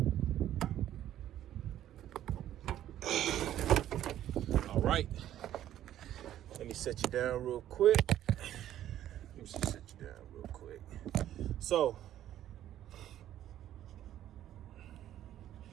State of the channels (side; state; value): left; quieter; 12.1 dB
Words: All right, let me set you down real quick. So,